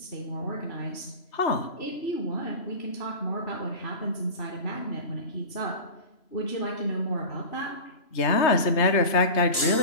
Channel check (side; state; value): right; late; 3.0 ms